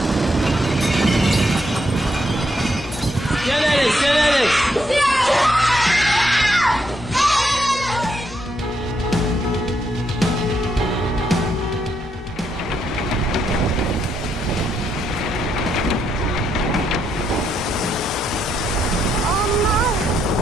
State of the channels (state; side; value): normal; both; correlation 0.77